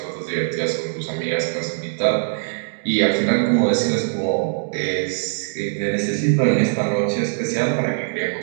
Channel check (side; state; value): left; silent; digital silence